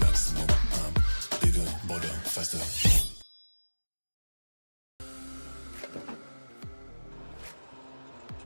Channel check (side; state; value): both; inverted; correlation -1.00